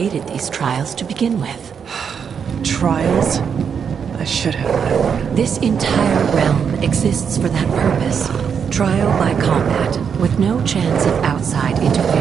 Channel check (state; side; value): quieter; left; 7.0 dB